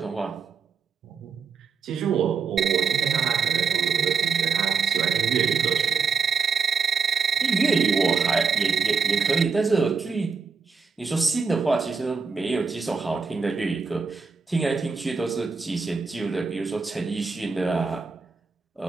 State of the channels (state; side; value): quieter; left; 5.5 dB